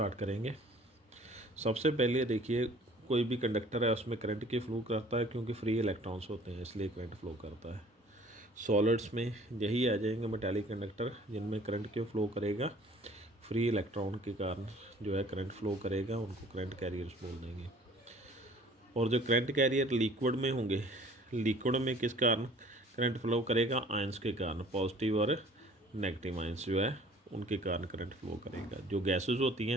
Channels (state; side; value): normal; both; correlation 0.52